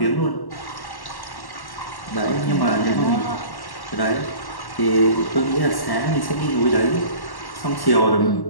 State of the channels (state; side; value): late; right; 1.1 ms